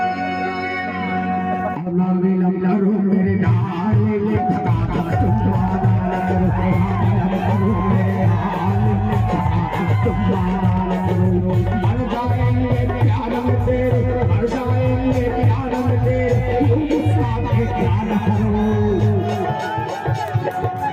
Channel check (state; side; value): identical; both; correlation 1.00